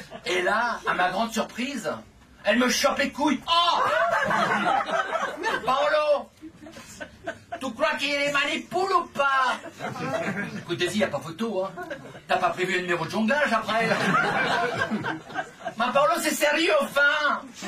Et là, à ma grande surprise, elle me chope les couilles. Oh Paolo, tu crois qu'il les manipule ou pas? Écoute, Daisy, y a pas photo, hein. T'as pas prévu un numéro de jonglage après? Ma Paolo, c'est sérieux, enfin.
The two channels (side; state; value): both; identical; correlation 1.00